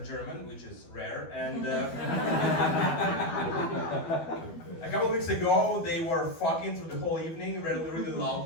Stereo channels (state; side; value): late; right; 12 ms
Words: German, which is rare. And a couple of weeks ago they were fucking through the whole evening really, really